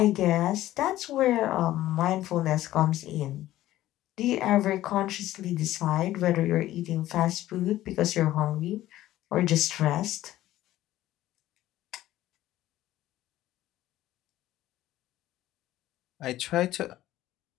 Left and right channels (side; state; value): right; quieter; 14.6 dB